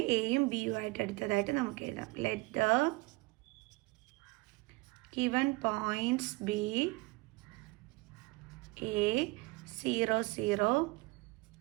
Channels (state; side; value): quieter; left; 23.7 dB